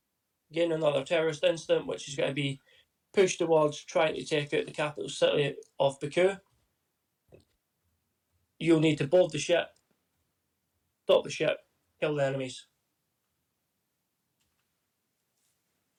Again, another terrorist incident, which is going to be pushed towards trying to take out the capital city of Baku. You'll need to board the ship, stop the ship, kill the enemies.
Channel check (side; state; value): both; identical; correlation 1.00